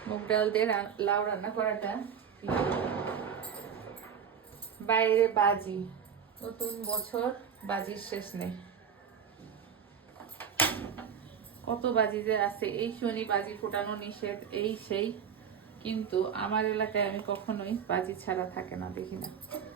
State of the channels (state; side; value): quieter; left; 7.4 dB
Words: মুগ ডাল দিয়ে লাউ রান্না করাটা। বাইরে বাজি, নতুন বছর, বাজির শেষ নেই। কত বাজি যে আছে, এই শনি বাজি ফোটানো নিষেধ, এই সেই, কিন্তু আমার এলাকায় আমি কখনোই বাজি ছাড়া থাকে না, দেখি না।